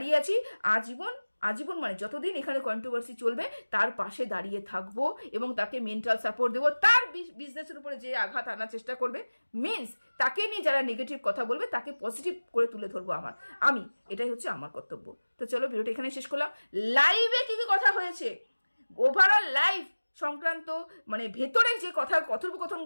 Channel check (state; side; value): inverted; both; correlation -1.00